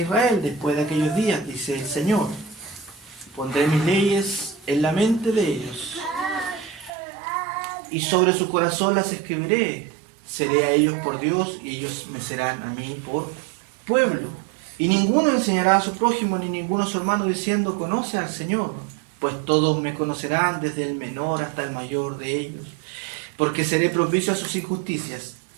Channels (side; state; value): left; drops out; at 6.9 s